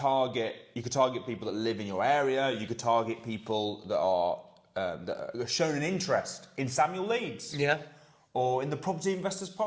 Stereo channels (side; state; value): both; identical; correlation 1.00